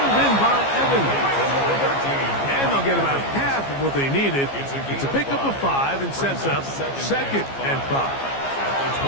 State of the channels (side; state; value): right; late; 15 ms